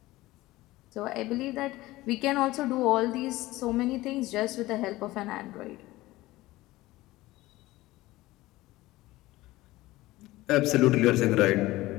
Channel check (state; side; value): quieter; right; 18.2 dB